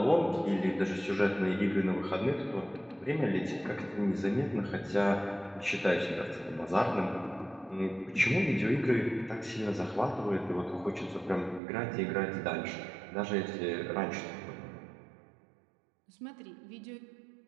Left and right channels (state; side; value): drops out; left; at 11.6 s